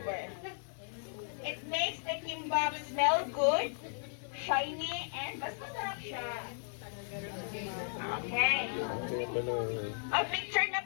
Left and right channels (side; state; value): right; silent; digital silence